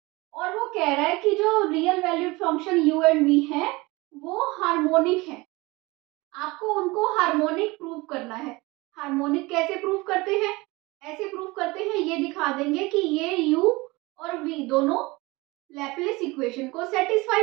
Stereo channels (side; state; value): left; quieter; 22.9 dB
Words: और वो कह रहा है कि जो real valued function u and v है वो हार्मोनिक है, आपको उनको हार्मोनिक प्रूव करना है। हार्मोनिक कैसे प्रूव करते हैं, ऐसे प्रूव करते हैं, ये दिखा देंगे कि ये u और v दोनों लैप्लेस इक्वेशन को